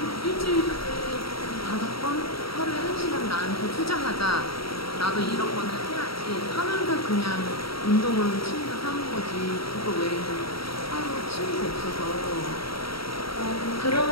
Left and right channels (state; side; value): late; right; 0.75 ms